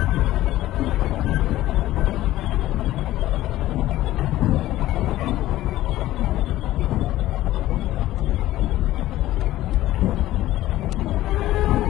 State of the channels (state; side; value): quieter; right; 15.2 dB